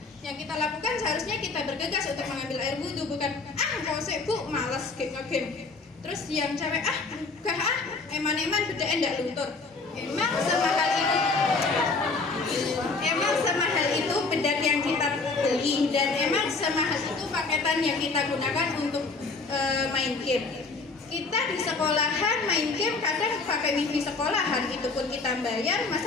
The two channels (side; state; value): right; quieter; 4.0 dB